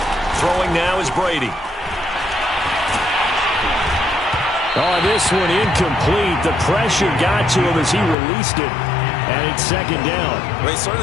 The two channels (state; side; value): drops out; right; at 8.2 s